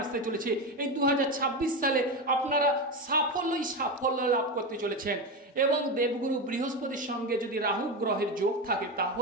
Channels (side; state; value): both; normal; correlation 0.17